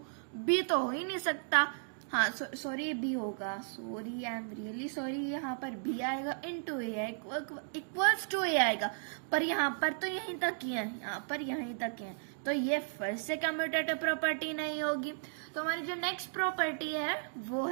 बी, तो हो ही नहीं सकता। हाँ सॉरी बी होगा, sorry I am really sorry, यहाँ पर बी आएगा इंटू ए है इक्वल्स टू ए आएगा, पर यहाँ पर तो यहीं तक ही है, यहाँ पर यहीं तक है, तो ये फिर से कम्यूटेटिव प्रॉपर्टी नहीं होगी। तो हमारी जो नेक्स्ट प्रॉपर्टी है वो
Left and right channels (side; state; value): left; silent; digital silence